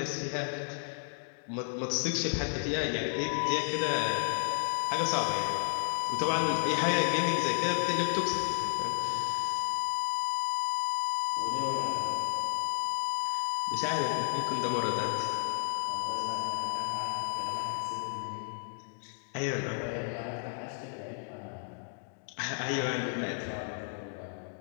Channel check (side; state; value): right; silent; 56 dB below the other